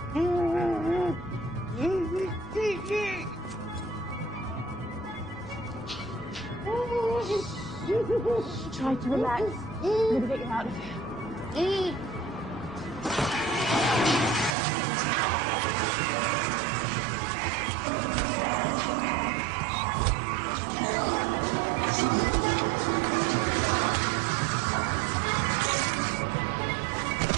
Try to relax. I'm gonna get you out of here.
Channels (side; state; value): left; drops out; at 14.6 s